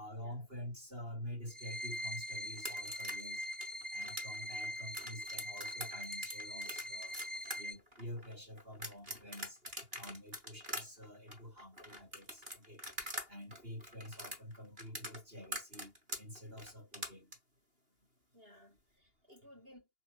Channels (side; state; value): left; late; 2.8 ms